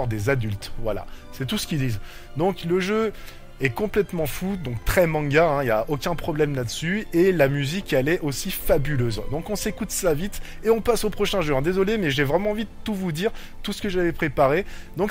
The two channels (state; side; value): identical; both; correlation 1.00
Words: des adultes. Voilà, c'est tout ce qu'ils disent. Donc le jeu est complètement fou, donc très manga, hein, y a aucun problème là-dessus, et la musique elle est aussi fabuleuse. Donc on s'écoute ça vite et on passe au prochain jeu, hein. Désolé mais j'ai vraiment envie de tout vous dire, tout ce que j'avais préparé,